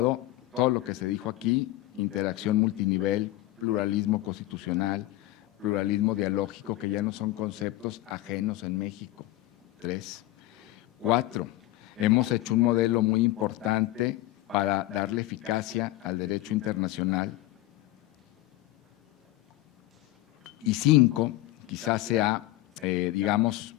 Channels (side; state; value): right; quieter; 16.7 dB